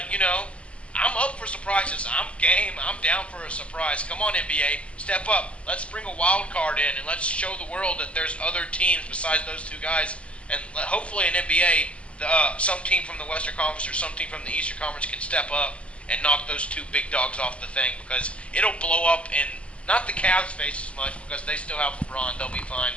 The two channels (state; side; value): late; right; 0.061 ms